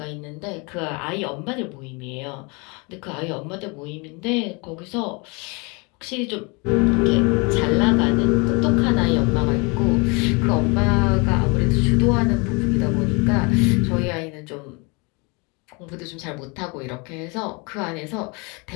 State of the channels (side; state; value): right; quieter; 29.6 dB